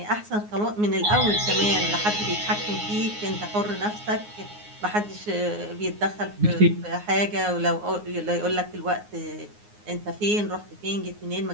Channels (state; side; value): late; left; 9.6 ms